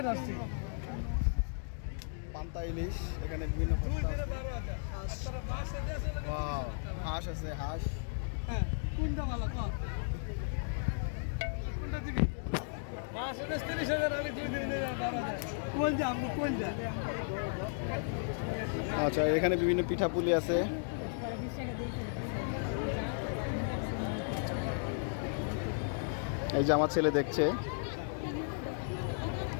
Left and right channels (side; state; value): right; silent; digital silence